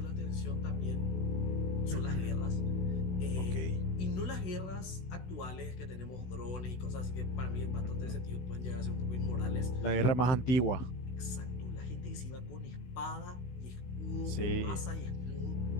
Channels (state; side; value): late; right; 16 ms